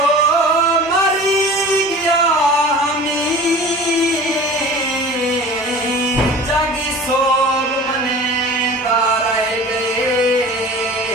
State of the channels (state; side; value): normal; both; correlation 0.40